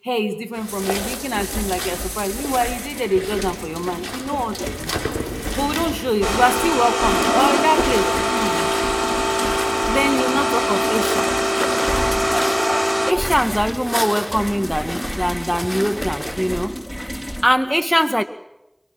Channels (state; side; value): identical; both; correlation 1.00